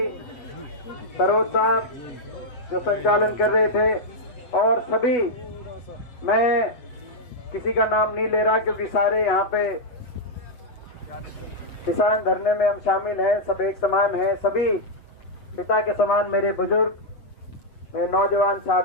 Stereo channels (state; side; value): late; right; 8.1 ms